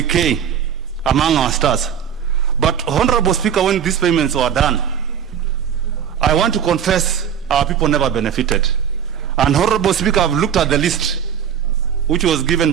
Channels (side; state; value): left; quieter; 8.4 dB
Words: among our stars. But Honorable Speaker, when these payments were done, I want to confess our people never benefited. And Honorable Speaker, I've looked at the list which was